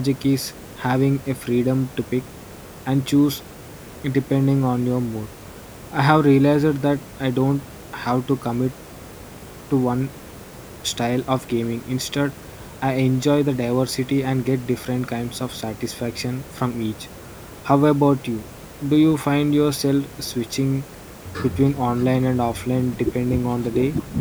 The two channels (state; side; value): identical; both; correlation 1.00